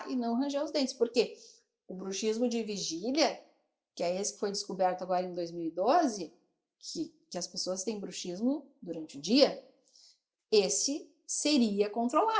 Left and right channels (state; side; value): identical; both; correlation 1.00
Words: e não ranger os dentes. Porque o bruxismo de vigília, que é esse que foi descoberto agora em 2012, que as pessoas têm bruxismo durante o dia, esse seria